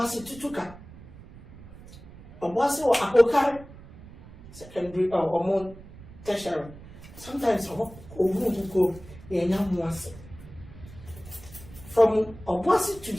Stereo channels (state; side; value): noise; right; rumble, 18 dB below the sound